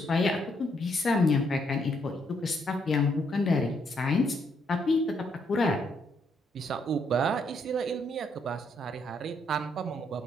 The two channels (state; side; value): normal; both; correlation 0.73